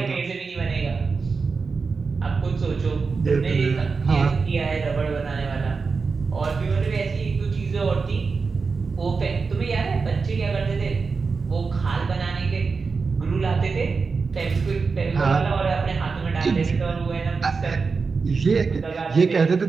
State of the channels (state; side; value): quieter; left; 4.7 dB